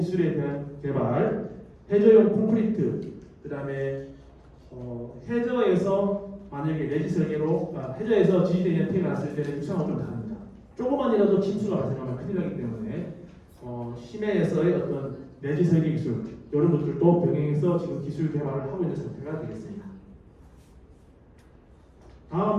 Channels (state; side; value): identical; both; correlation 1.00